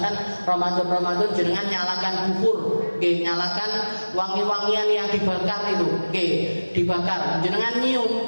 Ramadan jenengan nyalakan bukur, nyalakan wangi-wangian yang dibakar itu, dibakar, jenengan nyium,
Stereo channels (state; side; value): inverted; both; correlation -1.00